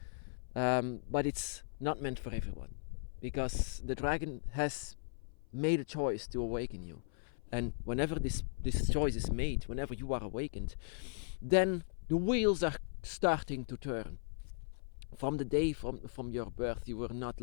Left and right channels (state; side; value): silent; right; 53 dB below the other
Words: But it's not meant for everyone, because the dragon has made a choice to awaken you, and whenever this choice is made, whenever you are awakened, then the wheels are starting to turn. From the day from your birth, you were not